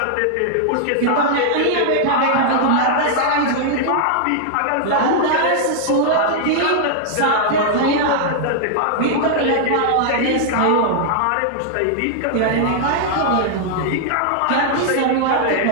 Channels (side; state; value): both; different; correlation -0.01